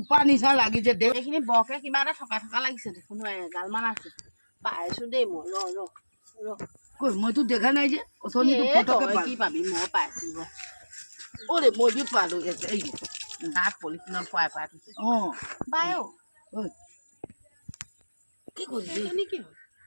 নিচা লাগিছে দে এইখিনি বৰকে কিবা এটা থকা থকা লাগিছে দেখোন এগালমান আছে পাইছো দেই মই ৰ কৈ মইতো দেখা নাই যে অথনিটো ফটকে কি পাবি মই পাইছো অৰে মই যে পালো এই তাত পলিথিনত খুৱাই খুৱাই থৈছে বাই কি কৰিবি এইজনী কি হ'ল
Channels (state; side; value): inverted; both; correlation -1.00